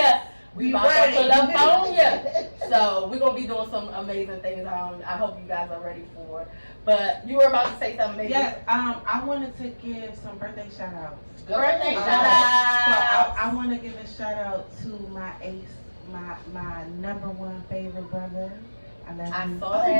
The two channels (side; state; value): both; inverted; correlation -1.00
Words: We Be about to ready. pull up on ya. So we're gonna be doing some amazing things. I hope you guys are ready for. But you were about to say something, baby. Yes, I wanted to give some birthday shout outs. Birthday Shout shout So out. I want to give a shout out to my ace, my number one favorite brother. I love I you. saw My